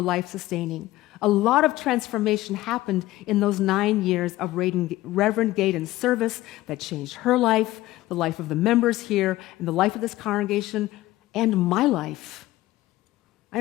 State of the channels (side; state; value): right; quieter; 16.8 dB